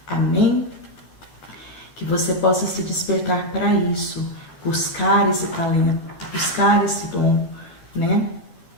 Amém? Que você possa se despertar para isso, buscar esse talento, buscar esse dom, né?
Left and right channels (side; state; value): right; late; 12 ms